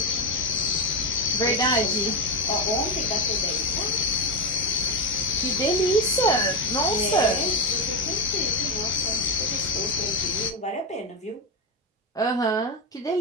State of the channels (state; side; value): normal; both; correlation 0.10